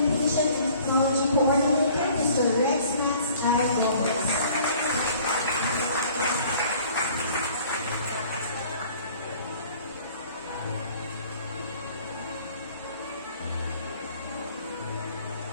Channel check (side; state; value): both; inverted; correlation -0.53